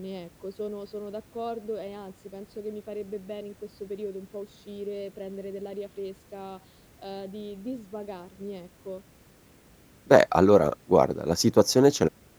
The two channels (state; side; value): identical; both; correlation 1.00